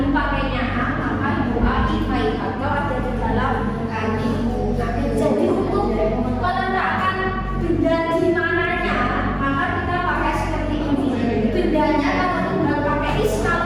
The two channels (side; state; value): both; identical; correlation 1.00